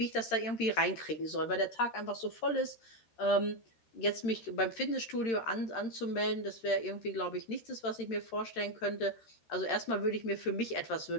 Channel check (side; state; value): right; late; 13 ms